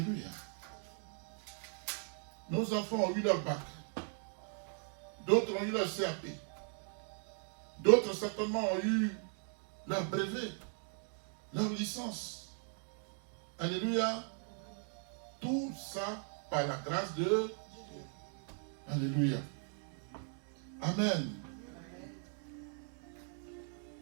Nos enfants ont eu leur bac. D'autres ont eu leur CAP. D'autres certainement ont eu leur brevet, leur licence. Alléluia. Tout ça par la grâce de Dieu. Alléluia. Amen.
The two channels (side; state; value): left; silent; 52 dB below the other